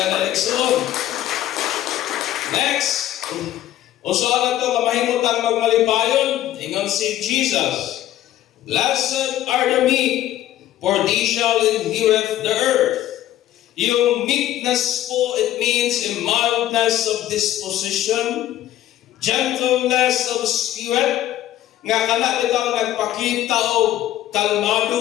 Nixon. Next, usahan nato nga mahimutang magmalipayon, ingon si Jesus. Blessed are the meek, for they shall inherit the earth. Yung meekness po, it means a mildness of disposition, gentleness of spirit, nga kana bitaw nagpakita og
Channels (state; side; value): quieter; right; 13.2 dB